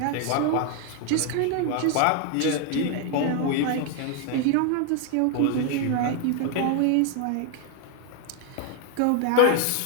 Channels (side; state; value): both; different; correlation 0.00